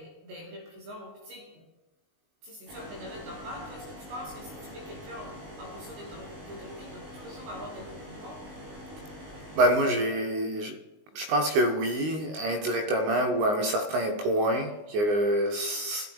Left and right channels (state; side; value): late; left; 19 ms